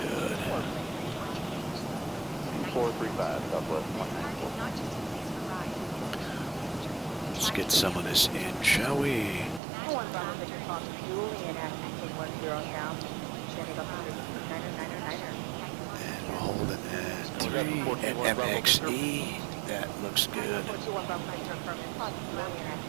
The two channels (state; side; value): drops out; left; at 9.6 s